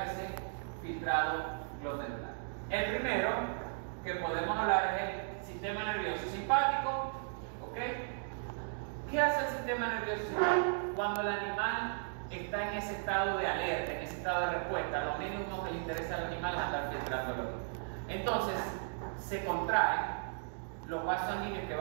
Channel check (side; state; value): left; silent; digital silence